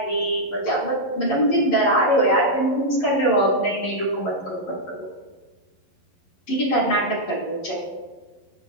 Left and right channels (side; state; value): right; late; 11 ms